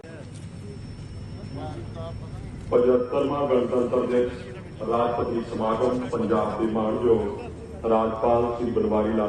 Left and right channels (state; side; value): identical; both; correlation 1.00